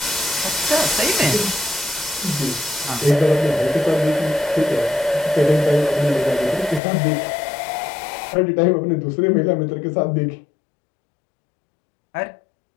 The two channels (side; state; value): right; drops out; at 6.8 s